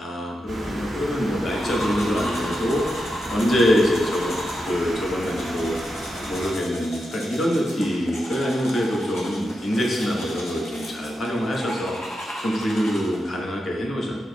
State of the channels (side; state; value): both; normal; correlation 0.87